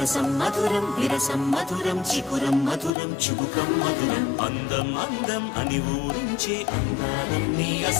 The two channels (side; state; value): right; drops out; at 2.9 s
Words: మధురం విరసం మధురం చికురం మధురం చుబుకం మధురం అందం అందం అని ఊరించే అందాలన్నీ